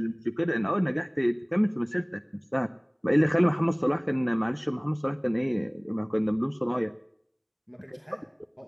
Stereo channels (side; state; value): both; identical; correlation 1.00